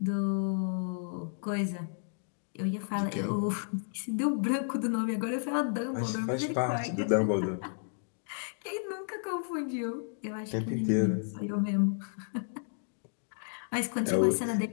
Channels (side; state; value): right; silent; digital silence